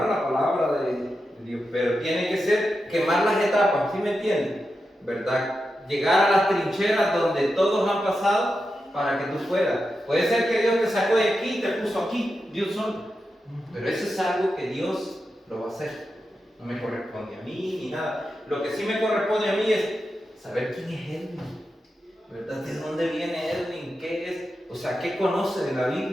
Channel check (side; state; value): both; normal; correlation 0.89